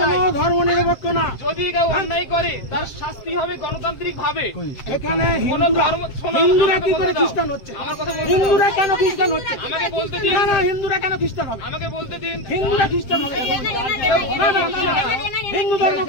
কোনো ধর্ম নিরপেক্ষ না। যদি কেউ অন্যায় করে তার শাস্তি হবে গণতান্ত্রিক ভাবে। এখানে কোনো ধর্ম শোনো, হিন্দুরা আমাকে কি বলতে করে দাও। খ্রিস্টান হচ্ছে? আমার কথা বলতে হিন্দুরা দাও। কেন খ্রিস্টান হচ্ছে? আমাকে বলতে দিন। না না হিন্দুরা কেন খ্রিস্টান হবে? আমাকে বলতে দিন। হিন্দুরা খ্রিস্টান হবে না না না না হিন্দু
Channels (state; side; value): late; right; 7.6 ms